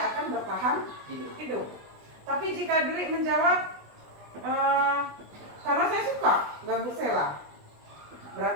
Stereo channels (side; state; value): left; late; 20 ms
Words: akan bertahan hidup. Tapi jika Dwi menjawab, karena saya suka ganggu Sela,